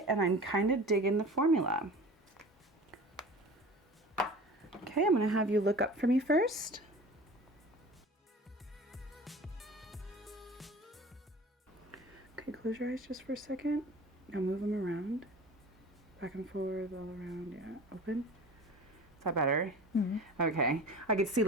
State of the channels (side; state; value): both; normal; correlation 0.39